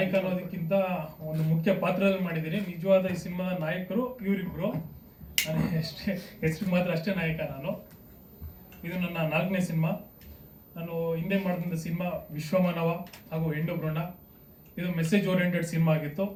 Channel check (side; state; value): both; identical; correlation 1.00